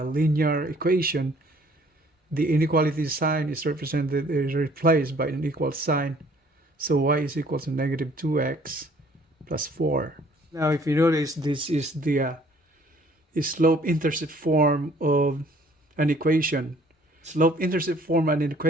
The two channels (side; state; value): both; normal; correlation 0.58